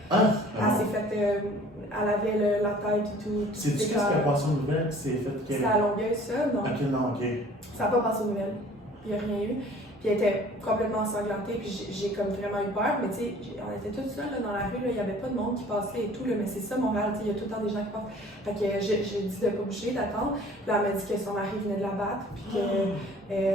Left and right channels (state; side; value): normal; both; correlation 0.50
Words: Elle s'est faite. Elle avait la tête et tout. C'est-tu qu'est-ce qui a passé aux nouvelles qui s'est fait? C'était à Longueuil, ça? Non. Ok, non, ok. Ça n'a pas passé aux nouvelles. Il n'y a rien eu. Puis elle était complètement ensanglantée, puis j'ai comme vraiment eu peur. Mais tu sais, on était tous seuls là, dans la rue, il n'y avait pas de monde qui passait et tout. Là, mais c'est ça, Montréal, il y a tout le temps des gens qui passent. Fait que j'ai dit de ne pas bouger, d'attendre. Puis là, elle m'a dit que son mari venait de la battre, puis